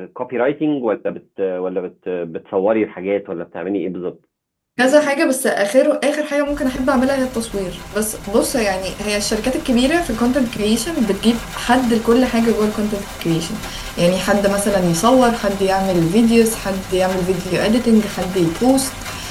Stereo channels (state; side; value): identical; both; correlation 1.00